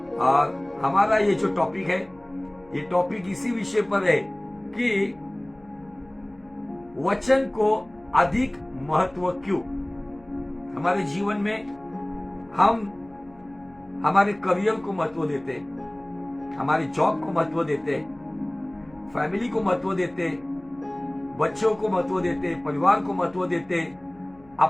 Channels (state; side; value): noise; left; hum, 29 dB below the sound